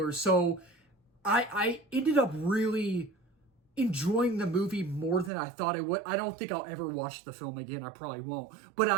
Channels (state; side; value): drops out; left; at 5.3 s